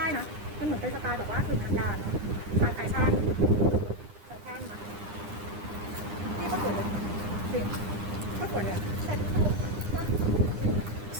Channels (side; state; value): left; late; 9.9 ms